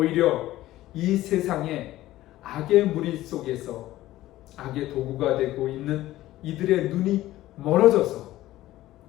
이 세상에 악의 무리 속에서 악의 도구가 되고 있는 이들의 눈이 멀어져서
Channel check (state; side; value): quieter; right; 15.5 dB